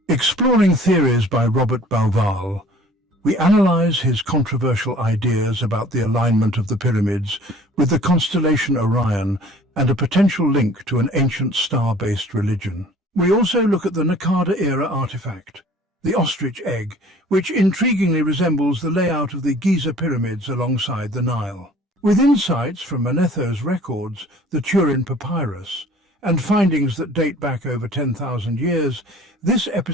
Exploring theories by Robert Bauval, we analyze his controversial ideas about the alignment of the pyramids with the constellation Orion and a potential link to an ancient star-based religion. We also look at the Naqada-era artifact, the ostrich egg, which intriguingly resembles the layout of the Giza pyramids alongside the Nile. With insights from Manetho's records, the Turin Papyrus, and findings that date back over 10,000 years, this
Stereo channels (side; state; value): both; normal; correlation 0.50